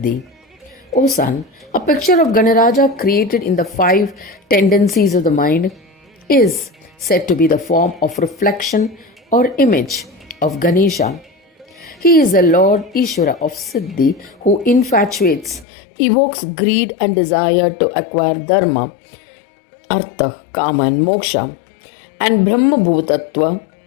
O son, a picture of Ganaraja created in the five tendencies of the mind is said to be the form of reflection or image of Ganesha. He is the Lord Ishvara of Siddhi who infatuates, evokes greed and desire to acquire Dharma, Artha, Kama, and Moksha, and Brahma Bhutattva,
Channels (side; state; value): right; drops out; at 15.7 s